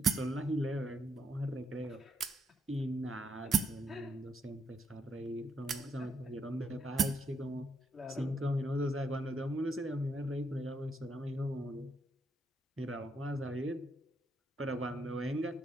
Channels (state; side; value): normal; both; correlation 0.76